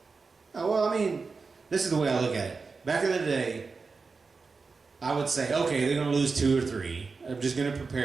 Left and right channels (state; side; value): quieter; left; 4.5 dB